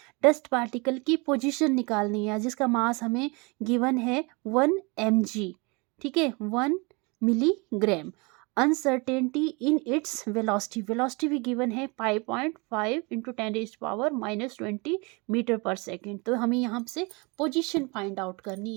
डस्ट पार्टिकल की पोजीशन निकालनी है, जिसका मास हमें गिवन है 1 mg। ठीक है, 1 milligram. Uncertainty in its velocity, velocity भी गिवन है 5.5 इंटू 10⁻⁻20 मीटर पर सेकेंड। तो हमें यहाँ से पोजीशन फाइंड आउट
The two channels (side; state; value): left; quieter; 28.6 dB